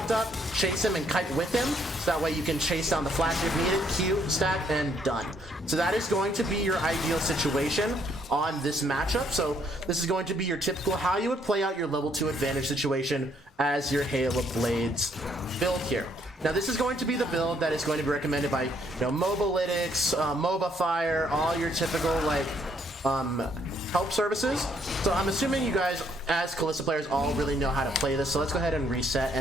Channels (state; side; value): normal; both; correlation 0.69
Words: up, chase him and kite with him, so that way you can chase down the flash if needed, Q, stack, and done. So that is going to be your ideal situation on this matchup. So this is going to be your typical how you would play out your level 2 advantage situation as your Hail of Blades build here. Now, this is going to be the build that is going to be recommended by, Mobalytics, MobaFire, all your typical like help services. So I'm assuming you guys as Kalista players all really know how to play this. So let's go ahead and reset